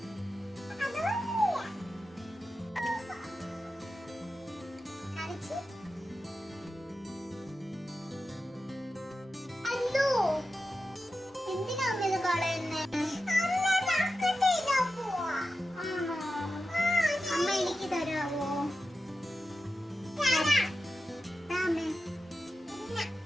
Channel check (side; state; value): both; normal; correlation 0.92